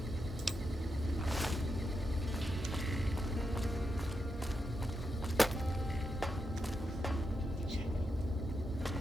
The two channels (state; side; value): normal; both; correlation 0.85